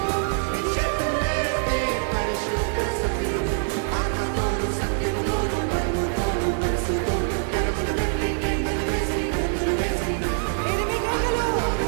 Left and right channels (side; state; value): left; silent; digital silence